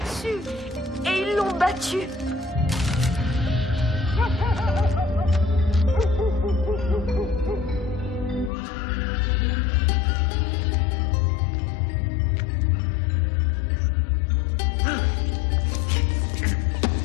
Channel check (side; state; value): right; drops out; at 8.5 s